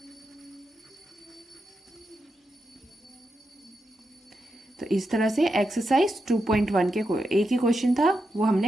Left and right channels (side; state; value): both; normal; correlation 0.86